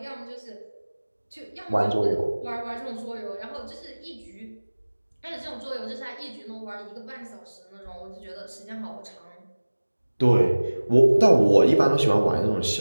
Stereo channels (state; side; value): inverted; both; correlation -1.00